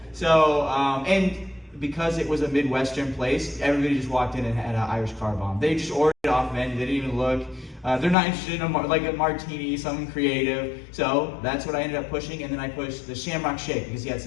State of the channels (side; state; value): right; drops out; at 8.2 s